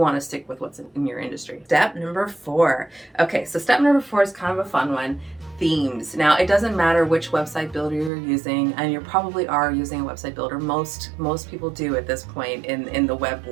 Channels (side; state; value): left; drops out; at 8.1 s